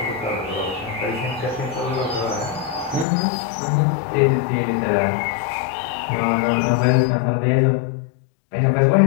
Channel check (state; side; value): drops out; right; at 3.1 s